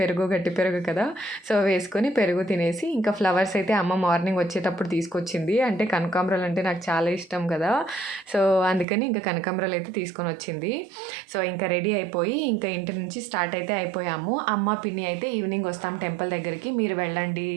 గట్టి పెరుగు కదా, సో వేసుకొని పెరుగు తినేసి ఇంకా ఫ్లవర్స్ అయితే అమ్మ మార్నింగ్ వచ్చేటప్పుడు తీసుకొచ్చింది. అంటే కనకాంబరాలు అంటే నాకు చాలా ఇష్టం కదా, సో అందుకని ఇంకా కనకాంబరాలు అయితే తీసుకొని వచ్చింది. సో ఇంకా రెడీ అయిపోయి ఇంకా ఇంటి నుంచి స్టార్ట్ అయితే అయిపోయాము. అమ్మ, పిన్ని అయితే ఈవినింగ్ వస్తాం టెంపుల్ దగ్గరికి, మీరు వెళ్ళండి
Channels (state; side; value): drops out; left; at 8.8 s